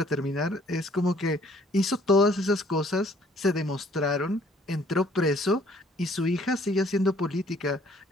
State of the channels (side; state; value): both; normal; correlation 0.60